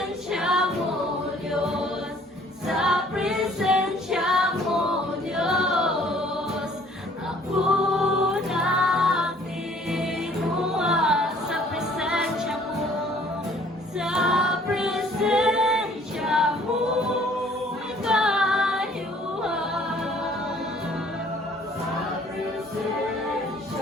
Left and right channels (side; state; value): both; normal; correlation 0.57